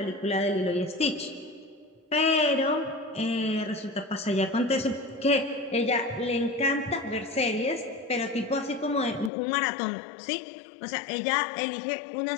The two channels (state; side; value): drops out; right; at 9.3 s